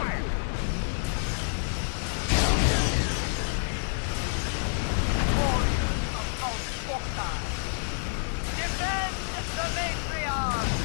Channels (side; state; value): right; silent; digital silence